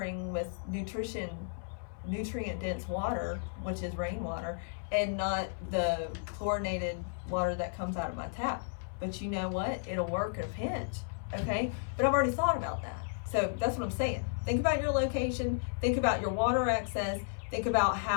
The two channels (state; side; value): silent; right; 55 dB below the other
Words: with nutrient dense water, which is rainwater, and not the chlorinated water that comes out of my tap. But you know what? It'll work in a pinch. Okay? But I've already thought about that. So that's what I'm saying. Think about your location. Think about your water access. Think about